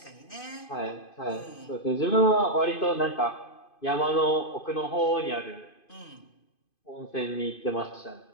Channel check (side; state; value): right; late; 2.5 ms